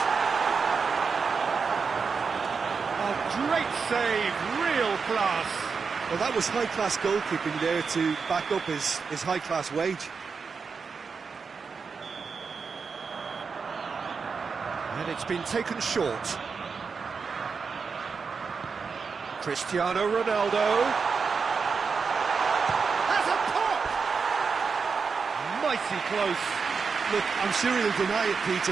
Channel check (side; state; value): left; quieter; 5.3 dB